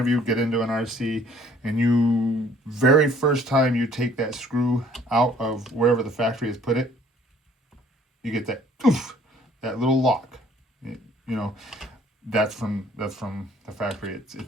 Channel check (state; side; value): normal; both; correlation 0.57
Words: you get into an RC and you, very first time you take that screw out of wherever the factory has put it, you get that oof, that little lock. That's from the factory.